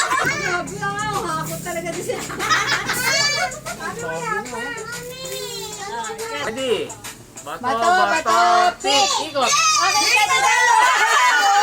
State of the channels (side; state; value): both; identical; correlation 1.00